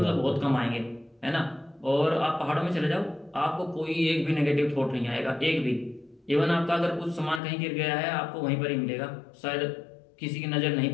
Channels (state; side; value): drops out; right; at 7.4 s